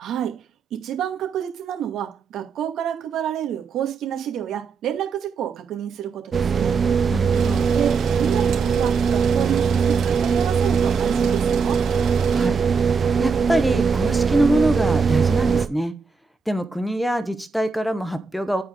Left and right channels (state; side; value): quieter; left; 5.1 dB